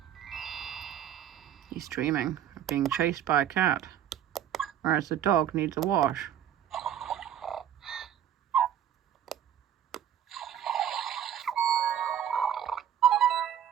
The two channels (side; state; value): left; quieter; 10.0 dB